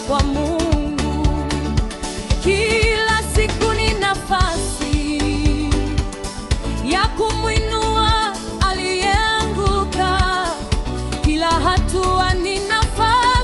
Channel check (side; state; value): both; identical; correlation 1.00